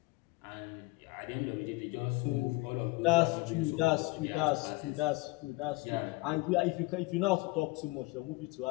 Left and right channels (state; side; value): quieter; right; 23.8 dB